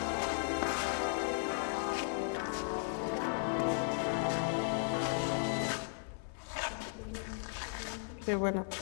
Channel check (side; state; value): right; silent; 54 dB below the other